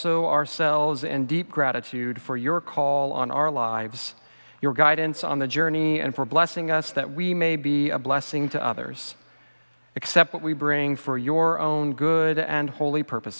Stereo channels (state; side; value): inverted; both; correlation -1.00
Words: ourselves in deep gratitude for your call on our lives, your guidance on the journey, and for blessing us that we may be a blessing to others. Accept what we bring for your own good and holy